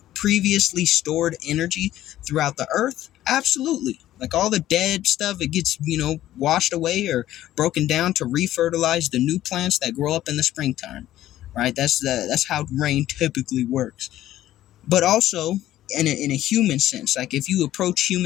previously stored energy throughout the earth. Absolutely. Like all the dead stuff, it gets, washed away or broken down to refertilize the new plants that grow up in the springtime, right? That's how rain typically works. But also, in a human sense, like if you approach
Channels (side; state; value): right; quieter; 13.6 dB